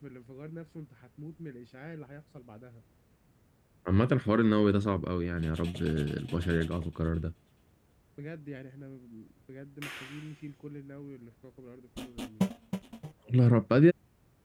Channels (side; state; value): both; identical; correlation 1.00